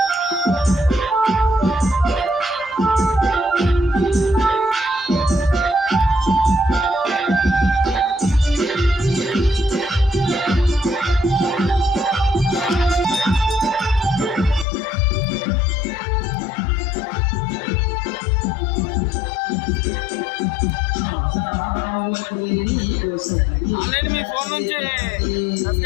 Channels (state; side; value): drops out; right; at 14.7 s